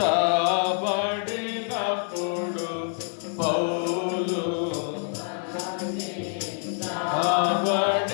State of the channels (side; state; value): right; silent; 56 dB below the other